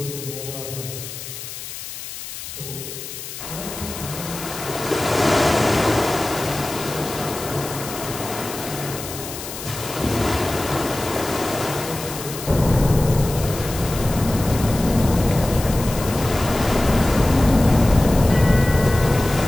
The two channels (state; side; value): noise; left; hiss, 10 dB below the sound